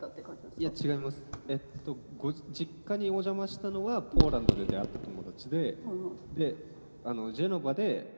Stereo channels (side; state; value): both; inverted; correlation -1.00